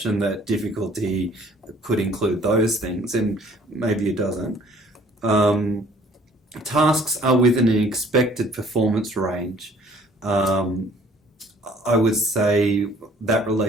that difficulty could include those things, and maybe it doesn't. Tasks are within an expected performance range. I would say that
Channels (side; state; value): both; normal; correlation 0.56